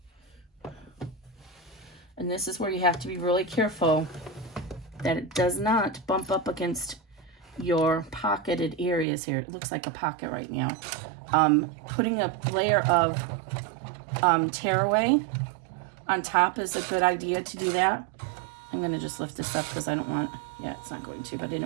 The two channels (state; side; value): drops out; left; at 9.1 s